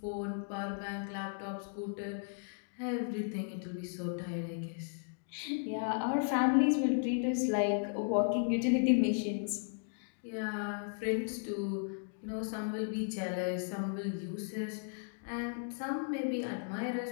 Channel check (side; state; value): right; silent; digital silence